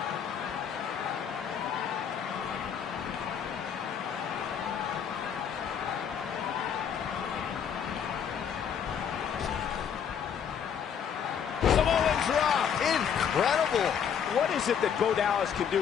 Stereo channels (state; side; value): quieter; right; 7.8 dB